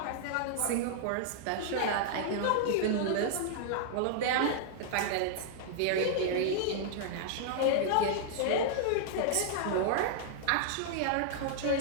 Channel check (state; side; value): different; both; correlation -0.01